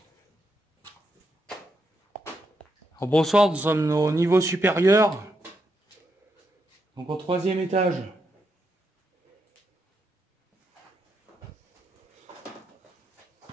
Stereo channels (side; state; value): both; normal; correlation 0.81